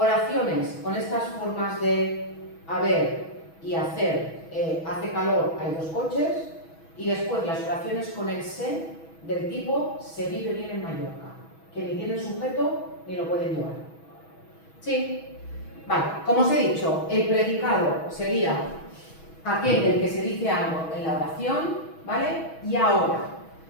con estas formas de haber y hacer, hace calor, hay 2 coches, y después las oraciones con el se del tipo se vive bien en Mallorca, que ni tienen sujeto ni lo pueden llevar. ¿Sí? Vale, como os he dicho, el predicado sería aquel del que se dice algo en la oración, ¿vale? Y ahora,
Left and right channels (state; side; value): late; right; 6.2 ms